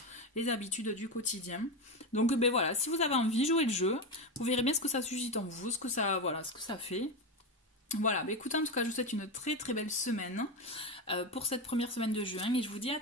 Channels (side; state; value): both; normal; correlation 0.15